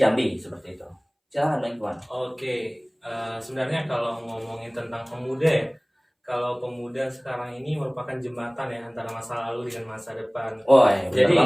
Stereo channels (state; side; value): identical; both; correlation 1.00